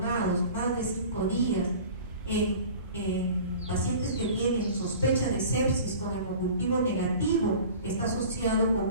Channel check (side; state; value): both; inverted; correlation -0.42